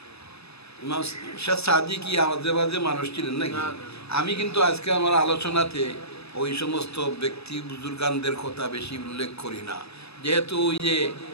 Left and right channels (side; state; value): right; late; 0.79 ms